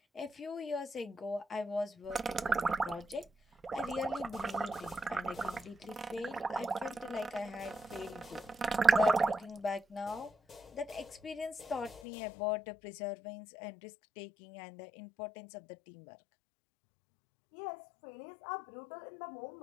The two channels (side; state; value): right; drops out; at 12.0 s